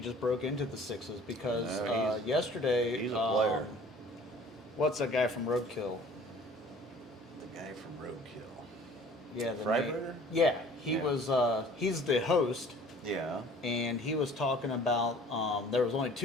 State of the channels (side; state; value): both; normal; correlation 0.50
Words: broke into the sixes because No, yesterday. he's a player. What's that guy from Roadkill? The guy from Roadkill. Yeah, Freiberger? Yeah, he Yeah. was. He's the host, Yeah. and he was talking about there was only